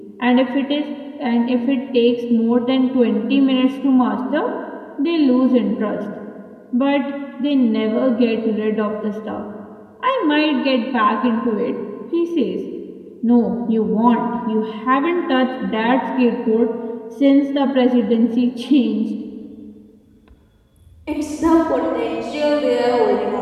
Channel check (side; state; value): both; identical; correlation 1.00